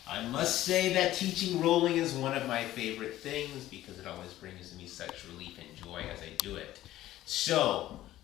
I must say that teaching rolling is one of my favorite things because it always brings me such relief and joy as I do it. So,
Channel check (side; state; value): right; quieter; 14.5 dB